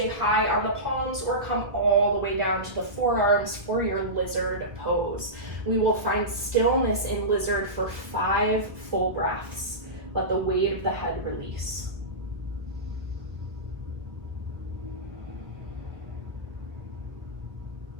high on the palms or come all the way down to the forearms for your lizard pose. We will find stillness in lizard for 5 full breaths. Let the weight of the head release.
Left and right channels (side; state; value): left; late; 1.3 ms